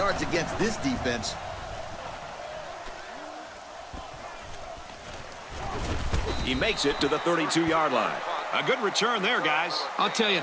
against this defense. He makes it to the 32-yard line. A good return there, guys. I'll tell you,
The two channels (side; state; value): both; identical; correlation 1.00